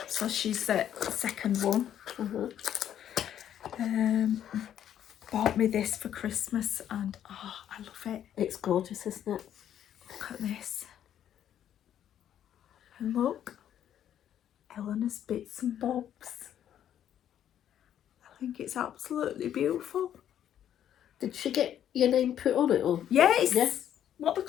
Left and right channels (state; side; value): quieter; right; 10.3 dB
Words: so she's the second one, bought me this for Christmas, and oh, I love it. It's gorgeous, isn't it? Look at this. And look, Eleanor's Bits and Bobs. I think it's absolutely beautiful. Did she get your name put on it? Or? Yeah, it's Yes. what they